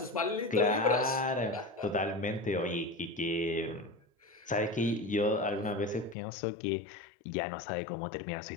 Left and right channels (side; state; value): right; drops out; at 6.2 s